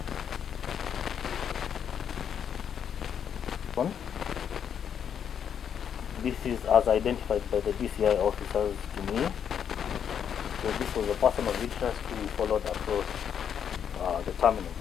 This is as identified by the DCI officers to me. So this was a person of interest who we followed across the terminal.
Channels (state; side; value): quieter; right; 8.2 dB